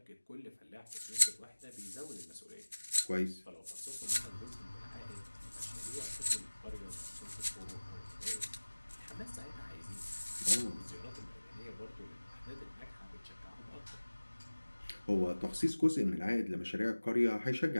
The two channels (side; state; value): both; inverted; correlation -1.00